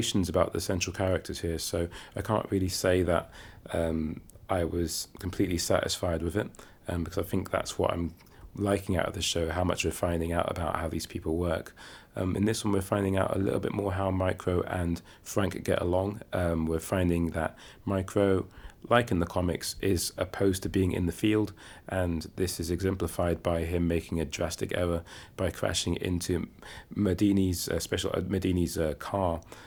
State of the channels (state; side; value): identical; both; correlation 1.00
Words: about the central characters here, so I can't really say that I was completely satisfied with it, because I think that's what I'm liking out of the show, how much we're finding out about how these people work. In this one, we're finding out a little bit more how Micro and Frank get along. We're finding that Micro, like in the comics, is opposed to being in the field, and this is exemplified by him making a drastic error by crashing into Medini's car.